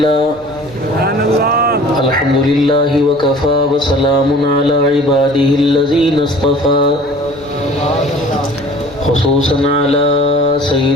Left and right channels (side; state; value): left; noise; rumble, 27 dB below the sound